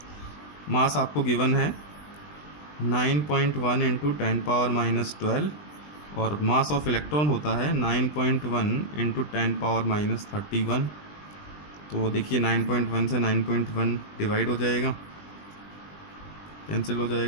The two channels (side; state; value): right; late; 20 ms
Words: मास आपको गिवन है 9.1 इंटू 10⁻⁻12, और मास ऑफ इलेक्ट्रॉन होता है 9.1 इंटू 10⁻31। तो देखिए 9.1 से 9.1 डिवाइड हो जाएगा, कैंसिल हो